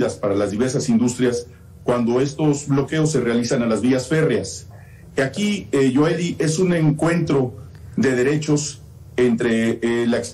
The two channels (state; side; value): identical; both; correlation 1.00